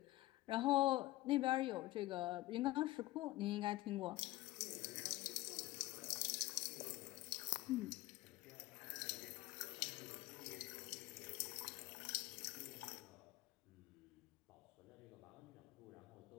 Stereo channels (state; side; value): quieter; right; 17.8 dB